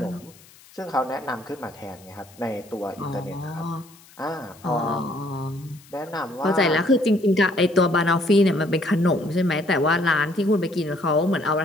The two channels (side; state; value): left; noise; hiss, 25 dB below the sound